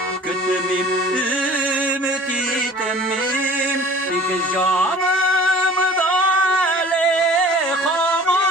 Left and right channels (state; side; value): normal; both; correlation 0.46